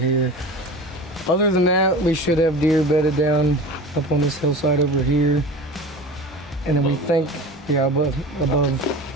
Other than that, we should have deer bedded down up on this hillside over here, and then we think, yeah, above Also above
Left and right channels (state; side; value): normal; both; correlation 0.34